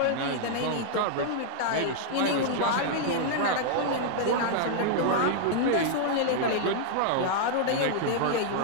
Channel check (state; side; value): different; both; correlation -0.01